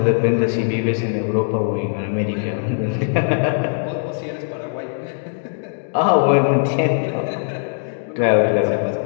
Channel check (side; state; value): right; silent; digital silence